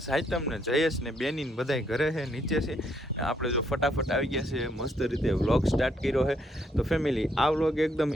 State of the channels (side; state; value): both; normal; correlation 0.72